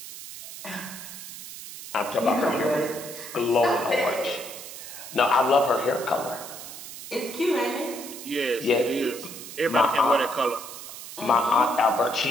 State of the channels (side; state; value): right; noise; hiss, 12 dB below the sound